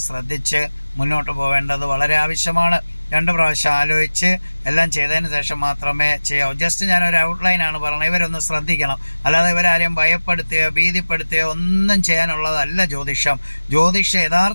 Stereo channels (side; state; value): both; inverted; correlation -1.00